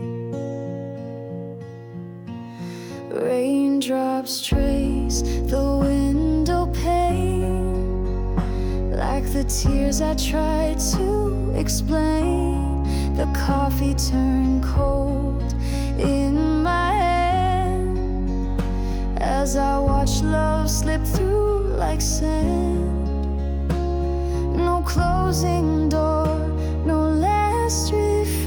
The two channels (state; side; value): identical; both; correlation 1.00